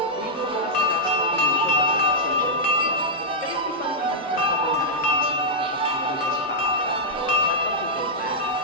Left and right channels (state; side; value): normal; both; correlation -0.06